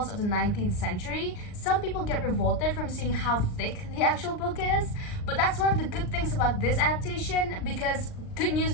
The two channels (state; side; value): late; right; 39 ms